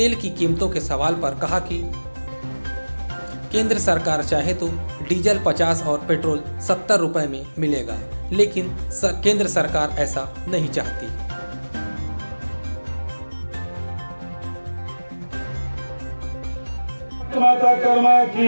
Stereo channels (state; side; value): inverted; both; correlation -1.00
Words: की कीमतों के सवाल पर कहा कि केंद्र सरकार चाहे तो डीजल 50 और पेट्रोल 70 रुपए में मिलेगा, लेकिन केंद्र सरकार ऐसा नहीं चाहती। माता कर्मा